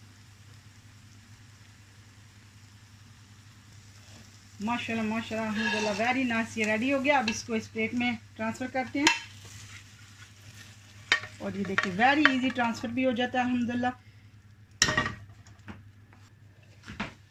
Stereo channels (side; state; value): both; identical; correlation 1.00